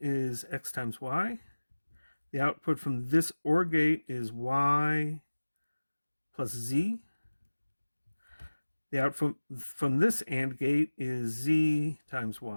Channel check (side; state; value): both; inverted; correlation -1.00